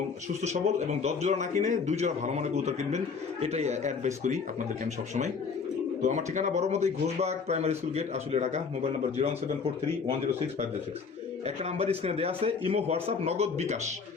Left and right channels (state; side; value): quieter; right; 5.4 dB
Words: সুস্থ সবল, এবং 10 জোড়া না কিনে 2 জোড়া ভালো মানের কবুতর কিনবেন, এটাই অ্যাডভাইস করি আপনাদেরকে আমি সবসময়। তো আমার ঠিকানা বড়মতেই Ghoshbag primary school gate, Ashulia, Dhaka. Mobile number 01743106506। একটা নাম্বার স্ক্রিনে দেওয়া আছে, ইমো, হোয়াটসঅ্যাপ, নগদ, বিকাশ।